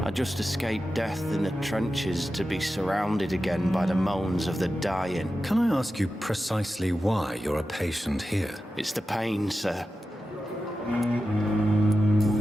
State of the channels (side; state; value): both; normal; correlation 0.92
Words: I just escaped death in the trenches to be surrounded again by the moans of the dying. Can I ask you precisely why you're a patient here? It's the pain, sir.